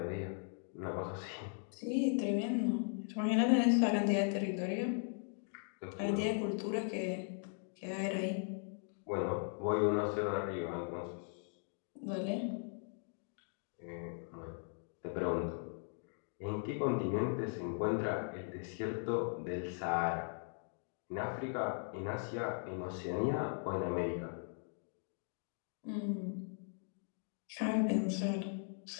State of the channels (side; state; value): right; silent; 52 dB below the other